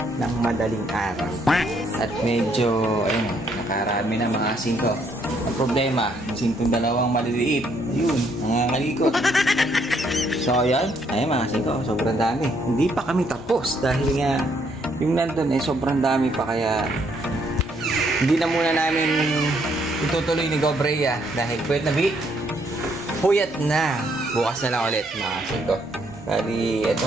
ng madaling araw. At medyo, ayun, nakarami na mga singko. Ang problema, sintong dalawang maliliit. Yun, nangangalikot. So, ayan. Ayun mga singko, sobrang dami. Hindi pa kami tapos dahil nga yung nandun sobrang dami pa kaya hindi na muna namin itutuloy ni Gobrea dahil puyat na. Bukas na lang ulit mga singko. Bali, eto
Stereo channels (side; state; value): both; normal; correlation 0.70